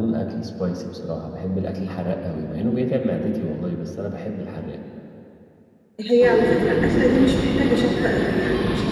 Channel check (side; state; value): both; identical; correlation 1.00